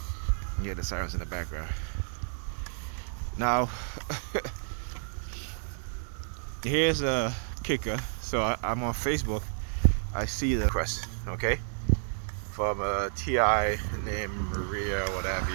You hear the sirens in the background. Now, here's a kicker. So I'm on Facebook. I see the request, okay, from a TI named Maria, whatever,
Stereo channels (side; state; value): left; silent; 56 dB below the other